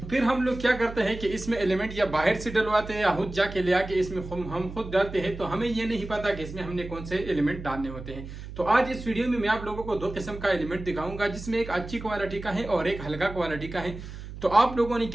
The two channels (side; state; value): right; noise; hum, 11 dB below the sound